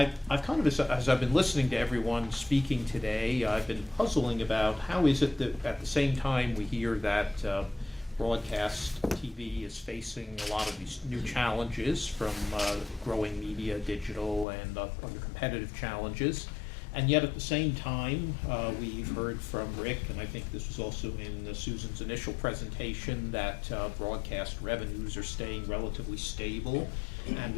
kind of, as I've been listening to everyone speaking today, I've been puzzling about how is it that at the same time we hear that broadcast TV is facing a lot of these new challenges from growing media, digital, and other competitive challenges. And yet at the same time, we've heard from Rick, and I think this was also in Susan's initial presentation, that broadcast revenues are staying relatively stable. And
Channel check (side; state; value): right; drops out; at 14.5 s